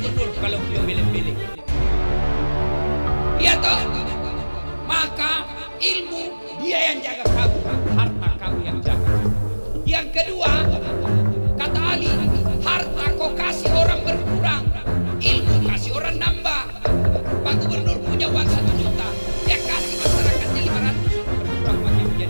kalau beliau milih-milih. Iya toh? Maka ilmu dia yang jaga kamu, harta kamu yang jaga. Yang kedua, kata Ali, harta kau kasih orang berkurang, ilmu kasih orang nambah. Pak Gubernur punya uang 1 juta, dia kasih masyarakatnya 500, berkurang makin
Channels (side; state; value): both; inverted; correlation -1.00